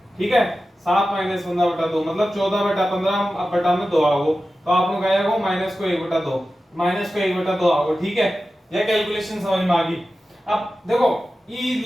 ठीक है। 7 माइनस 15/2 मतलब 14/15 में 2 आओ तो आप लोग आएगा वो माइनस को 1/2 माइनस को 1/2 आओ, ठीक है। यह कैलकुलेशन समझ में आ गई। अब देखो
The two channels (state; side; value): normal; both; correlation 0.94